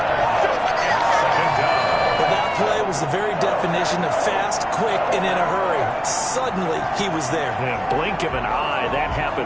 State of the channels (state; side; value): identical; both; correlation 1.00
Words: Well, that play was the very definition of fast, quick, and in a hurry. Suddenly, he was there. Yeah, blink of an eye, that